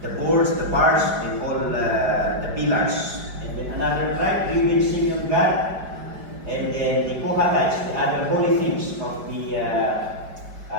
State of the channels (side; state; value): left; late; 5.1 ms